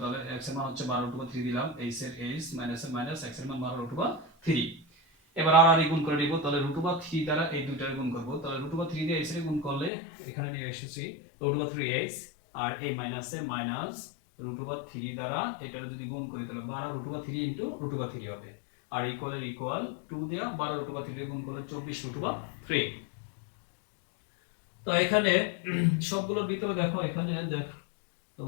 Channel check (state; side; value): drops out; right; at 9.9 s